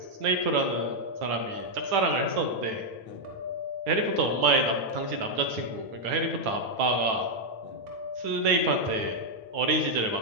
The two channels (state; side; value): late; left; 9.1 ms